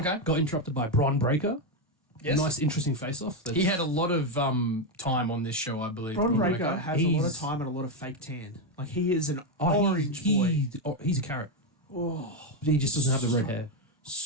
Got interrupted by Braun Breaker. Yes. Nice, interesting face-off. He had a lot of time on this show, I believe. Braun Braun Breaker has a lot of He's- time and a lot of fake tan. Like, he is an orange boy. He's a carrot. He just doesn't have the red hair.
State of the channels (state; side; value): normal; both; correlation 0.06